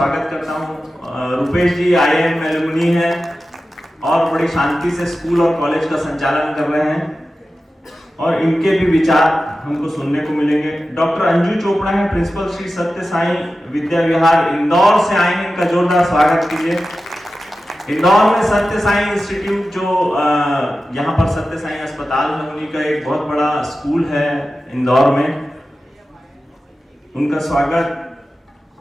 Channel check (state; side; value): normal; both; correlation 0.94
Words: करता हूं। रुपेश जी IIM एलुमनी हैं और बड़ी शांति से स्कूल और कॉलेज का संचालन कर रहे हैं और इनके भी विचार हमको सुनने को मिलेंगे। डॉक्टर अंजू चोपड़ा है, प्रिंसिपल श्री सत्य साई विद्या विहार, इंदौर से आए हैं, इनका जोरदार स्वागत कीजिए। इंदौर में सत्य साई इंस्टीट्यूट जो यहाँ पर सत्य साई अस्पताल है, उन्हीं का एक बहुत बड़ा स्कूल है इंदौर में, उनका स्वागत